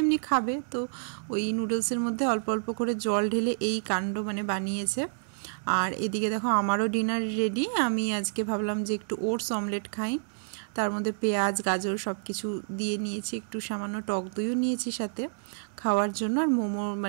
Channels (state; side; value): silent; left; digital silence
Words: এমনি খাবে, তো ওই নুডলসের মধ্যে অল্প অল্প করে জল ঢেলে এই কাণ্ড মানে বানিয়েছে। আর এদিকে দেখো আমারও ডিনার রেডি। আমি আজকে ভাবলাম যে একটু ওটস অমলেট খাই, তার মধ্যে পেঁয়াজ গাজর সব কিছু দিয়ে নিয়েছি, একটু সামান্য টক দইও নিয়েছি সাথে খাওয়ার জন্য। আর মোমো